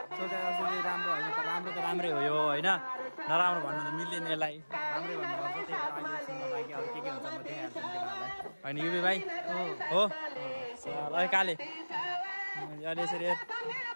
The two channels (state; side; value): inverted; both; correlation -1.00